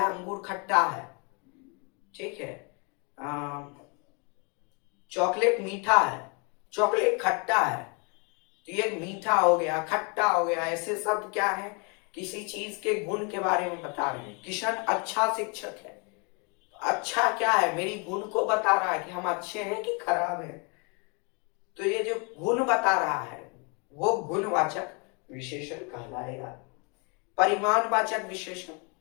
अंगूर खट्टा है, ठीक है। चॉकलेट मीठा है, चॉकलेट खट्टा है, तो ये मीठा हो गया, खट्टा हो गया। ऐसे शब्द क्या है? किसी चीज के गुण के बारे में बता रहे हैं। किशन अच्छा शिक्षक है, अच्छा क्या है? मेरी गुण को बता रहा है कि हम अच्छे हैं कि खराब है। तो ये जो गुण बता रहा है वो गुणवाचक विशेषण कहलाएगा। परिमाणवाचक विशेषण,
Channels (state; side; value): quieter; right; 33.6 dB